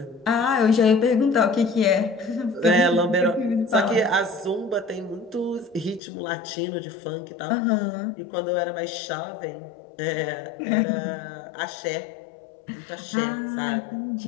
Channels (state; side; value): drops out; right; at 6.0 s